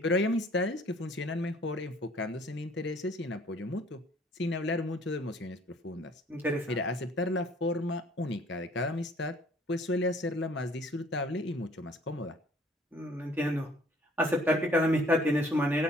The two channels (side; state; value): both; normal; correlation 0.56